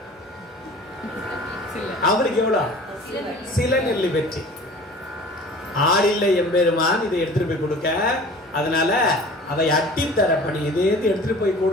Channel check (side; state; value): both; normal; correlation 0.44